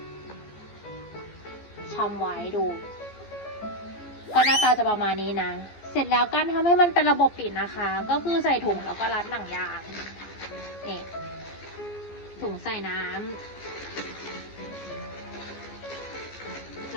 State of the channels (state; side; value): late; right; 14 ms